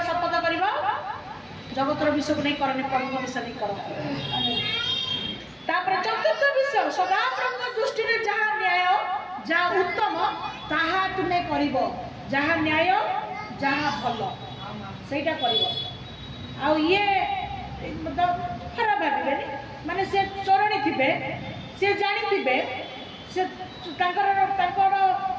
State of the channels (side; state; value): both; identical; correlation 1.00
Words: शपथ कर जगतर विषय को नहीं करनी, प्रभु विषय नहीं कर। चतुर्थ विषय सदा प्रभु दृष्टि में जहाँ न्याय जहाँ उत्तम ताहा तुम्हें करिब, जहाँ न्याय जहाँ भल सेटा करिब। आ ये मतलब खराब भावे माने से चरणी थिबे से जानी थिबे से